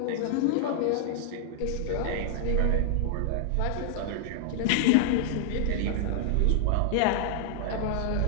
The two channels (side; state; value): both; different; correlation -0.01